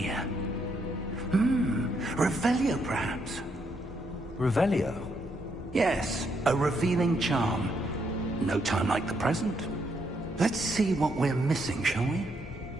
Revelio, perhaps? Revelio? Yes, a revealing charm. No time like the present. Let's see what we're missing, shall we?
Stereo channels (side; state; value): both; normal; correlation 0.76